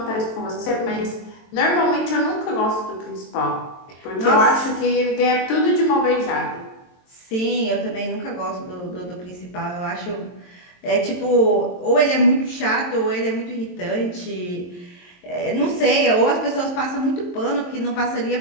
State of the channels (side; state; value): right; late; 22 ms